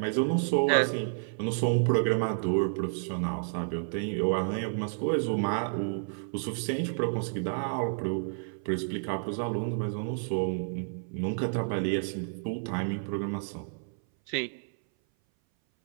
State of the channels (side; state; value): left; silent; 58 dB below the other